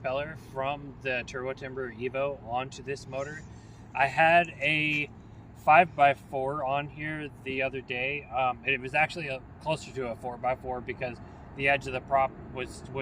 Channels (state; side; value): identical; both; correlation 1.00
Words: from the Turbo Timber Evo onto this motor. I had a 5x4 on here the other day. It was actually closer to a 4x4 because the edge of the prop was